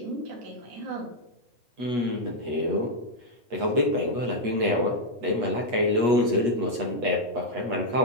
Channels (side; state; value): left; late; 8.3 ms